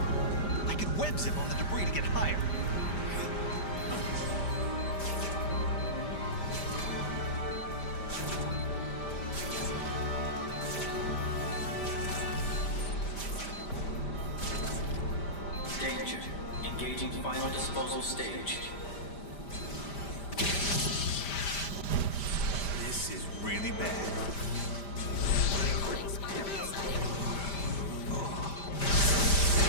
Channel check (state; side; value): late; right; 5.1 ms